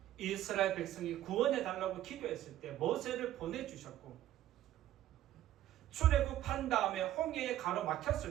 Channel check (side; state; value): left; quieter; 13.2 dB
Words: 이스라엘 백성이 구원해 달라고 기도했을 때 모세를 보내주셨고 출애굽한 다음에 홍해에